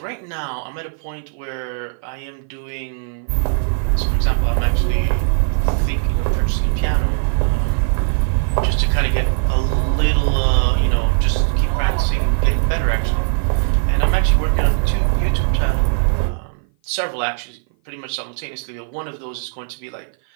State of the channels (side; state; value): left; silent; 57 dB below the other